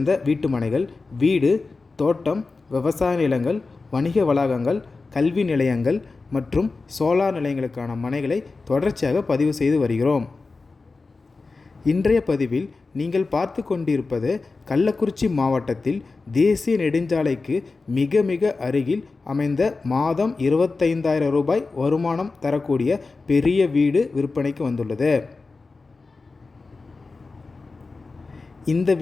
வீட்டு மனைகள், வீடு, தோட்டம், விவசாய நிலங்கள், வணிக வளாகங்கள், கல்வி நிலையங்கள் மற்றும் சோலார் நிலையங்களுக்கான மனைகளை தொடர்ச்சியாக பதிவு செய்து வருகிறோம். இன்றைய பதிவில் நீங்கள் பார்த்து கொண்டிருப்பது கள்ளக்குறிச்சி மாவட்டத்தில் தேசிய நெடுஞ்சாலைக்கு மிக மிக அருகில் அமைந்த மாதம் 25,000 ரூபாய் வருமானம் தரக்கூடிய பெரிய வீடு விற்பனைக்கு வந்துள்ளது. இந்த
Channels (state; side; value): quieter; right; 3.9 dB